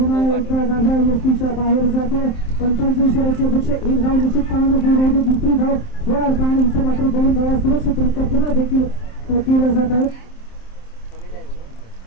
एकदा डाव्या व्यक्तीच्या बाहेर जातो. 45 इशाऱ्याची अपेक्षा. एक धाव निश्चितपणाने पूर्ण होते. दुसरी धाव होणार का आणि इथे मात्र 2 धावा सुरक्षितरित्या पुन्हा देखील केल्या जात आहेत.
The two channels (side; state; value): right; late; 27 ms